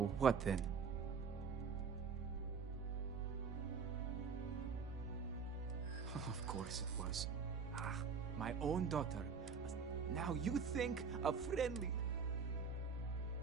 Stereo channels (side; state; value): left; quieter; 5.8 dB